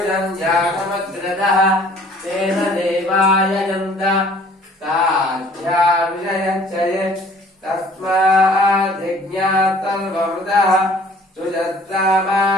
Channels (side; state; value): both; normal; correlation 0.54